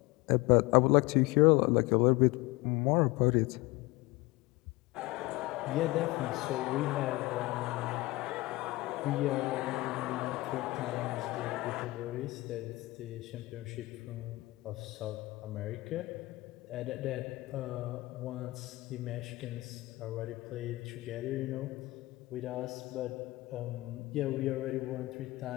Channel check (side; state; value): right; quieter; 21.0 dB